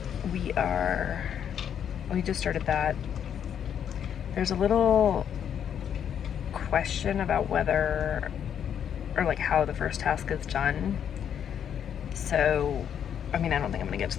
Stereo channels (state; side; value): quieter; right; 8.8 dB